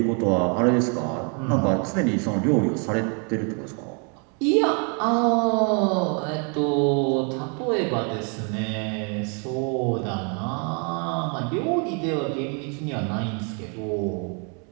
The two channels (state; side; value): quieter; left; 37.7 dB